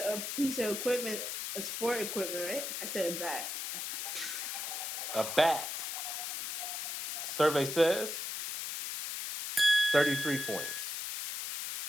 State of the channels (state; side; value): noise; left; hiss, 4 dB below the sound